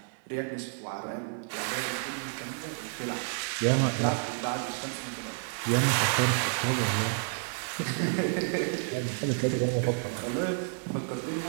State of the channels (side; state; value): left; silent; 58 dB below the other